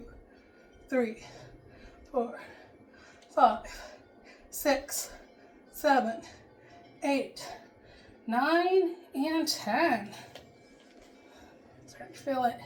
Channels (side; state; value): both; identical; correlation 1.00